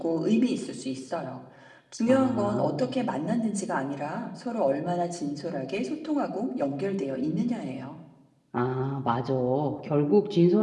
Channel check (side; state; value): both; identical; correlation 1.00